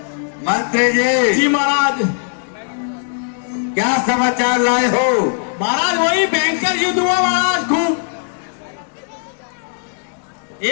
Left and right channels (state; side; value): silent; right; digital silence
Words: मंत्री जी, जी महाराज। क्या समाचार लाए हो? महाराज वही भयंकर युद्ध हुआ महाराज, खूब।